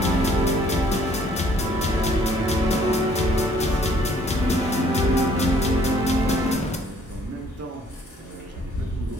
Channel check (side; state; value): both; normal; correlation 0.61